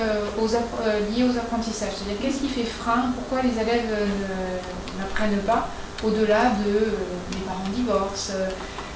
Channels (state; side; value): identical; both; correlation 1.00